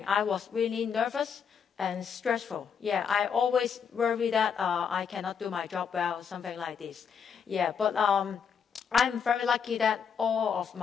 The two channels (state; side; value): quieter; right; 6.9 dB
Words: I was really nervous and stressful. Yeah, I always worry that I cannot do my job well, something like this. Yeah, but I'm very lucky that all of